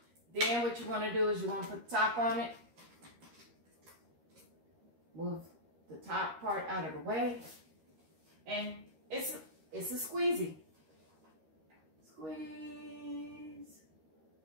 what you want to do is you want to put the top on it. Move the top part out of the way. And it's a squeezy. Squeeze.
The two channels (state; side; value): late; left; 13 ms